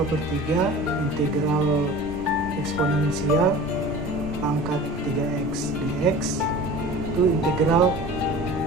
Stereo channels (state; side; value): normal; both; correlation 0.39